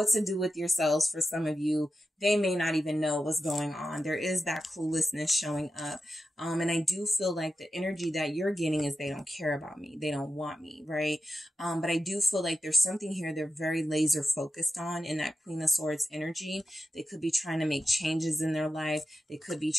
to do with yourselves. For some of you, they may not even know what's going on. There is that cluelessness showing up. And I do feel like the energy that you're getting is they don't care about me. They don't want me, right? But I do feel like there's something here they're very laser focused on in that Queen of Swords energy. They could be trying to make changes in their life. They could be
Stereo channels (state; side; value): normal; both; correlation 0.92